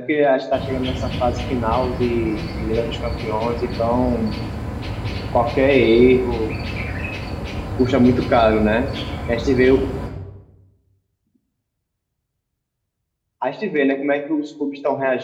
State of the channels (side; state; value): both; identical; correlation 1.00